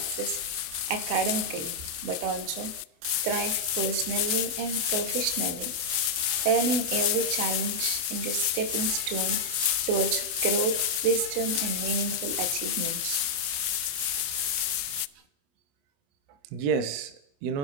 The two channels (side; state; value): left; late; 28 ms